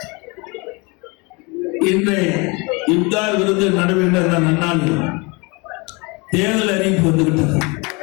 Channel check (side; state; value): right; quieter; 28.4 dB